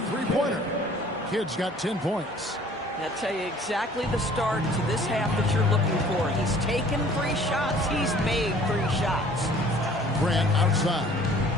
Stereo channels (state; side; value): normal; both; correlation 0.53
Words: three-pointer. Kidd's got 10 points. I'll tell you exactly the start to this half that you're looking for. He's taken 3 shots. He's made 3 shots. Grant outside.